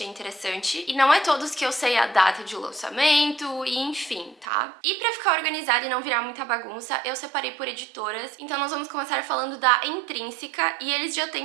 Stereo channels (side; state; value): left; drops out; at 4.5 s